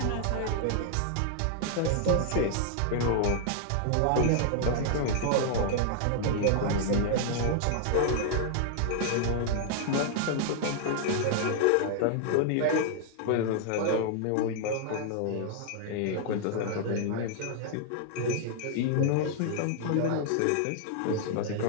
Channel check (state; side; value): different; both; correlation 0.00